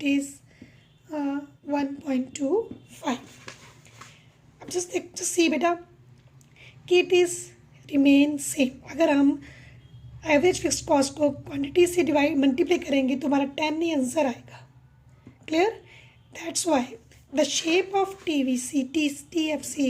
is 1.25. अब just see बेटा कि it is remain same। अगर हम average fixed cost को quantity से multiply करेंगे तो हमारा 10 ही आंसर आएगा। Clear? That's why the shape of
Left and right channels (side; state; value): both; identical; correlation 1.00